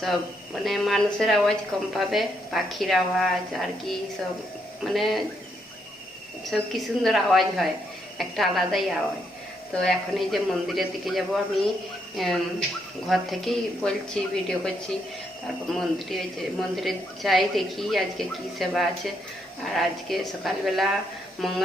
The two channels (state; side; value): normal; both; correlation 0.76